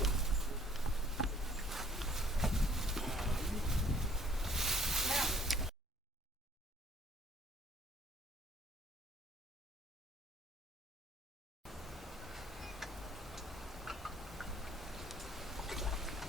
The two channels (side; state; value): both; normal; correlation 0.57